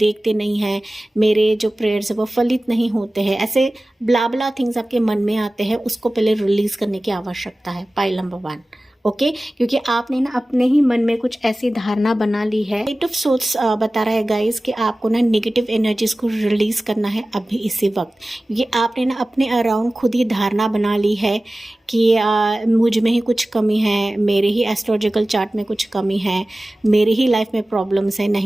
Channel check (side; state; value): both; normal; correlation 0.97